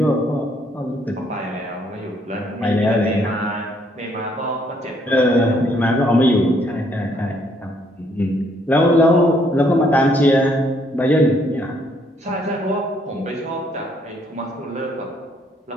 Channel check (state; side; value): normal; both; correlation 0.68